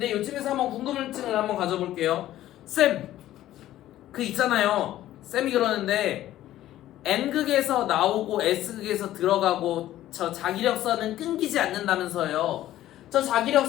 요쯤에서 한번 궁금증을 한번 가져볼게요. 쌤, 그 있잖아요. 쌤이 그러는데 N극에서 나오고 S극에서 들어가고 저 자기력선은 끊기지 않는다면서요. 저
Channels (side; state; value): right; quieter; 13.7 dB